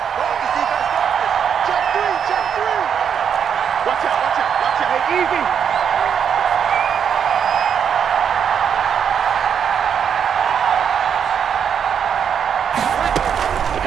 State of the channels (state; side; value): quieter; left; 7.7 dB